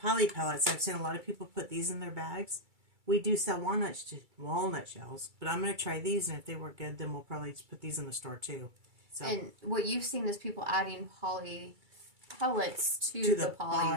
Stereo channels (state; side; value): late; left; 2.3 ms